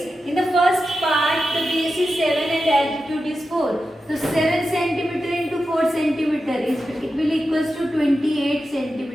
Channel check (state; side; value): normal; both; correlation 0.91